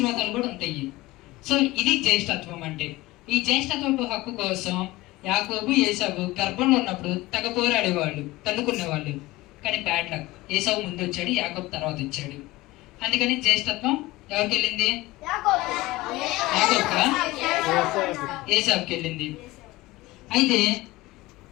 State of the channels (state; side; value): quieter; right; 18.7 dB